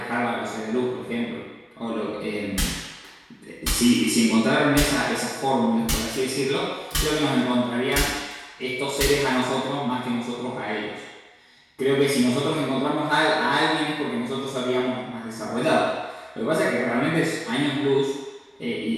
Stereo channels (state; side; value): identical; both; correlation 1.00